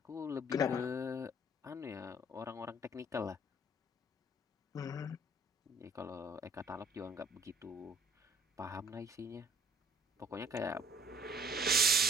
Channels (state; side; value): normal; both; correlation 0.55